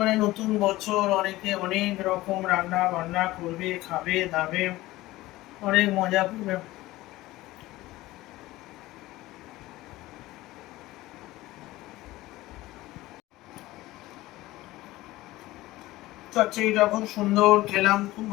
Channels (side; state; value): right; quieter; 17.9 dB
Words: মানে নতুন বছর, অনেকে অনেক রকম রান্না বান্না করবে, খাবে দাবে, অনেক মজা করবে। চচ্চড়িটা খুব সুন্দর খেলাম, খুব